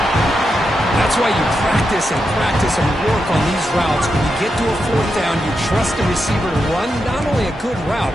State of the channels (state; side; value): normal; both; correlation 0.86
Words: That's why you practice and work on these routes. When you get to a fourth down, you trust the receiver to run not only a good route,